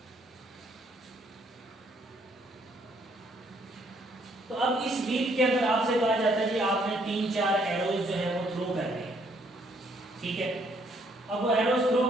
तो अब इस व्हील के अंदर आपसे कहा जाता है कि आपने 3-4 एरोज जो है वो थ्रो करने हैं। ठीक है, अब वो एरोज थ्रो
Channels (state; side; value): normal; both; correlation 0.68